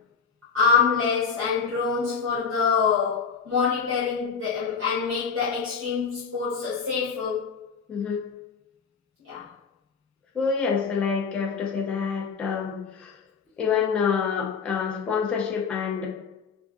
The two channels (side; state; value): right; quieter; 5.8 dB